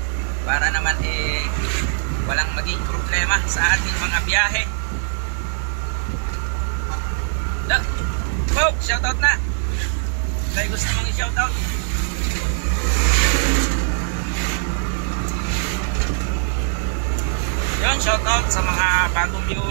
Para naman walang maging problema sa ating mga biyahe. Shoutout na. May gusto mong i-shoutout? Yun, shoutout sa mga bagong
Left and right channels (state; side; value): silent; left; 65 dB below the other